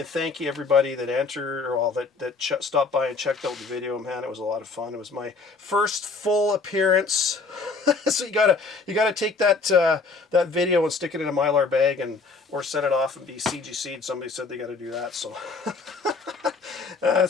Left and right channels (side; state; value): right; quieter; 4.3 dB